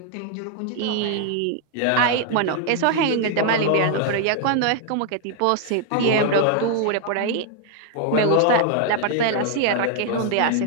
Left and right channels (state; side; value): different; both; correlation 0.00